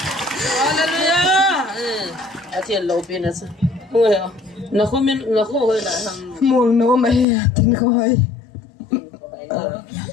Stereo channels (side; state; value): right; drops out; at 7.2 s